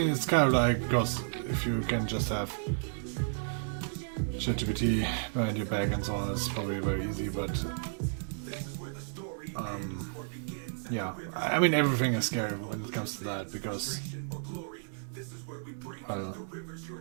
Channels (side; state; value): left; silent; digital silence